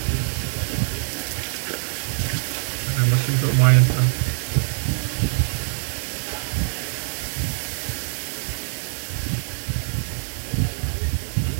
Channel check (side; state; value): left; silent; 63 dB below the other